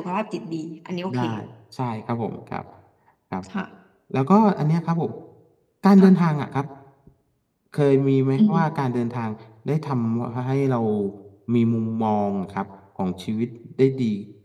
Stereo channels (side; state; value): both; identical; correlation 1.00